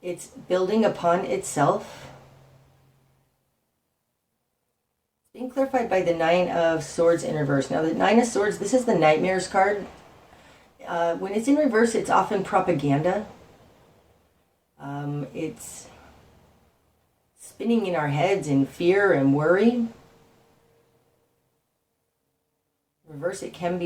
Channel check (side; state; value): both; identical; correlation 1.00